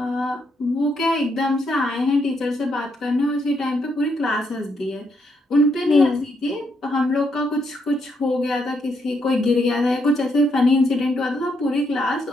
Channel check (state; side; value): normal; both; correlation 0.77